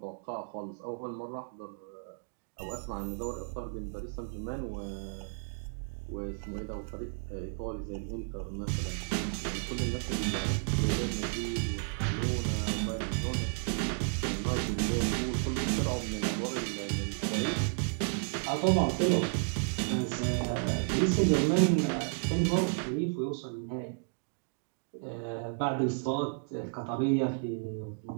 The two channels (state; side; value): silent; left; digital silence